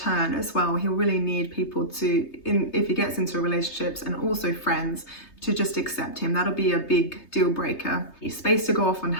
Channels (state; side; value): late; right; 3.3 ms